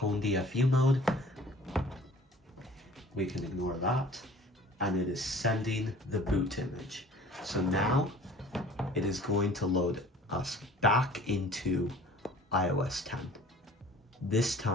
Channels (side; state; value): both; normal; correlation 0.48